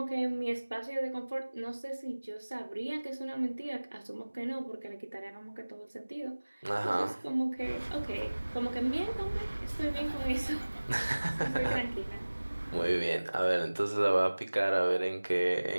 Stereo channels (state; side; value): inverted; both; correlation -1.00